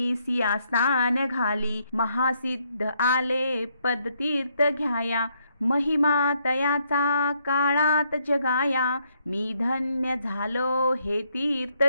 सिया स्नान घाली. महासिद्ध आले पदतीर्थ घ्याया, महिमा तयाचा काळात जगाया. मी धन्य झालो हे तीर्थ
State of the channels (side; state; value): both; inverted; correlation -0.74